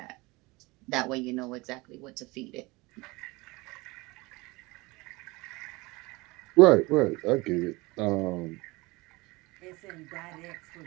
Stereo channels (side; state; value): left; quieter; 23.3 dB